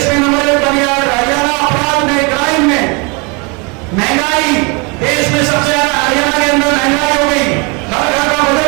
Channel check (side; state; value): left; quieter; 30.7 dB